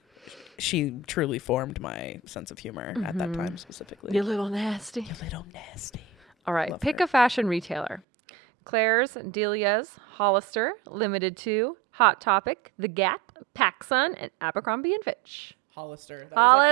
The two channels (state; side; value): drops out; left; at 8.0 s